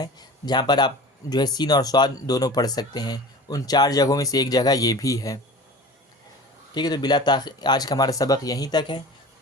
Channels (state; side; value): normal; both; correlation 0.37